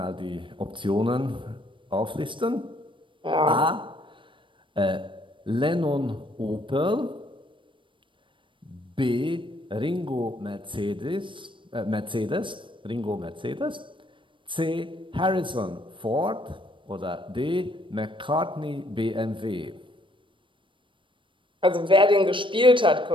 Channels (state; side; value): late; left; 0.24 ms